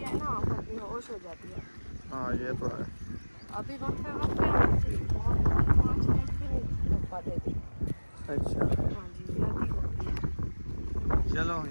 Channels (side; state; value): both; inverted; correlation -1.00